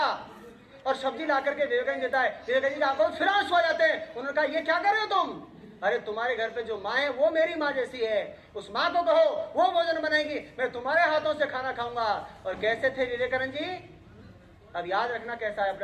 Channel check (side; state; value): both; identical; correlation 1.00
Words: और सब्जी ला करके विवेकानंद देता है। विवेकानंद जी की आंखों में फिर आंसू आ जाते हैं। उन्होंने कहा ये क्या कर रहे हो तुम? अरे तुम्हारे घर पे जो माँ है वो मेरी माँ जैसी है, उस माँ को कहो वो भोजन बनाएगी, मैं तुम्हारे हाथों से खाना खाऊंगा। और कैसे थे विवेकानंद जी? अब याद रखना कैसा है